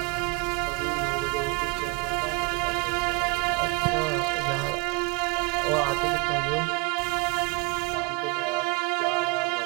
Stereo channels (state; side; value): quieter; left; 28.0 dB